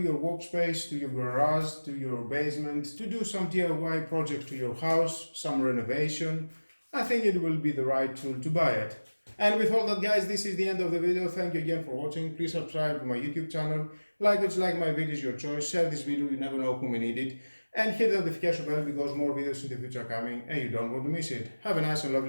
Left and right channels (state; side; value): inverted; both; correlation -1.00